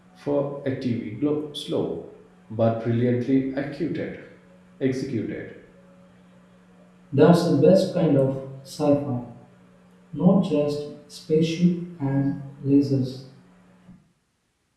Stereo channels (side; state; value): both; identical; correlation 1.00